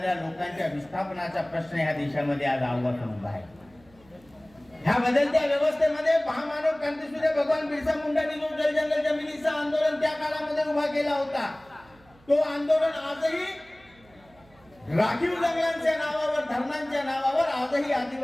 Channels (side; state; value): right; noise; hum, 28 dB below the sound